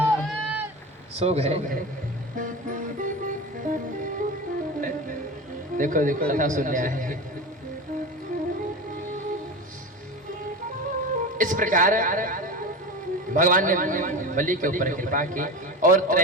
सो गए, देखो देखो कथा सुनने आए हैं। इस प्रकार भगवान ने बलि के ऊपर कृपा की और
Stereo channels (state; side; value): normal; both; correlation 0.26